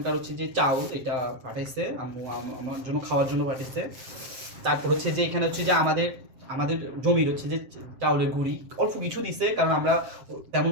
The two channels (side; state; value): left; late; 7.5 ms